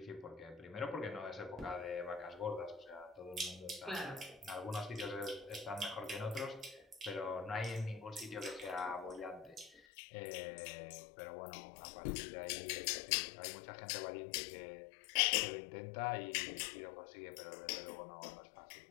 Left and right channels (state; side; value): drops out; right; at 9.8 s